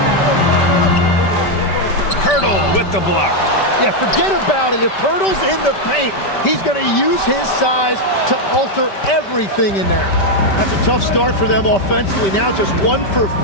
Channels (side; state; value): right; late; 5.1 ms